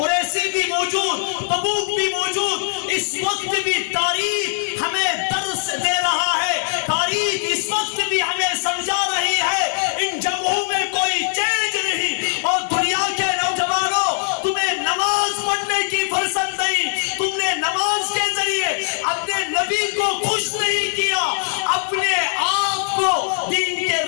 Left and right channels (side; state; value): right; silent; digital silence